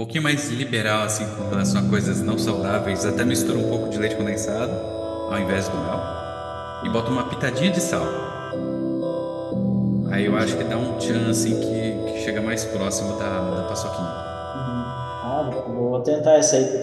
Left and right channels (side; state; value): both; identical; correlation 1.00